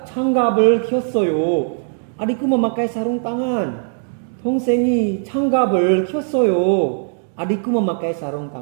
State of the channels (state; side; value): silent; left; 66 dB below the other